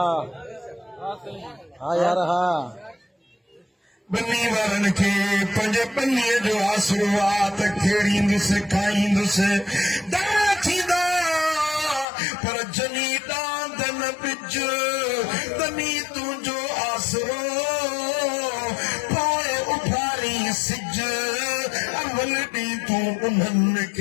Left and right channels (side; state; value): right; drops out; at 12.1 s